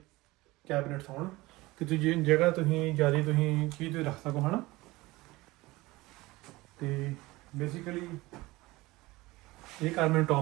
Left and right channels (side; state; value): left; quieter; 20.5 dB